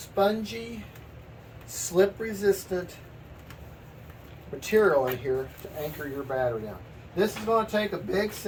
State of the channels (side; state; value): both; identical; correlation 1.00